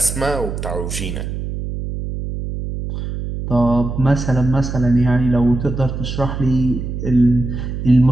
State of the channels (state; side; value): noise; right; hum, 6 dB below the sound